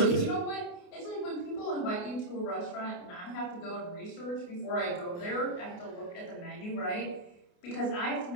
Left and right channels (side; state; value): right; late; 28 ms